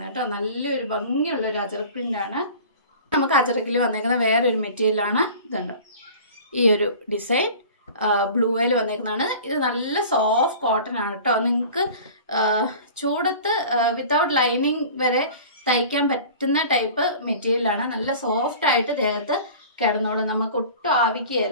കേട്ടോ. നല്ലൊരു ഭംഗിയുള്ളൊരു അജറക് പ്രിൻ്റാണ്. നമുക്ക് അജറക്കിൽ വന്നേക്കുന്ന വേറൊരു മെറ്റീരിയലാണ്. ഇതുണ്ട്, ഈ ഒരു ഡിസൈൻ ബ്ലൂയിൽ വന്നേക്കുന്നതാണ്. ഇത് നല്ല സോഫ്റ്റ് കോട്ടൺ ആണ് കേട്ടോ. നിങ്ങൾക്ക് ചൂടത്ത് വിത്തൗട്ട് ലൈനിങ് വരെ തയ്ക്കാൻ പറ്റുന്ന ടൈപ്പ് മെറ്റീരിയലാണ്. നല്ല സോഫ്റ്റ് ആയിട്ട് ദേഹത്ത് കിടന്നോളും, നമുക്ക് ഒട്ടും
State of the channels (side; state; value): both; inverted; correlation -0.41